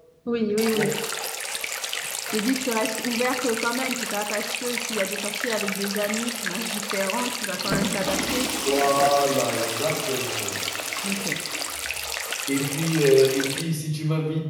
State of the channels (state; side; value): identical; both; correlation 1.00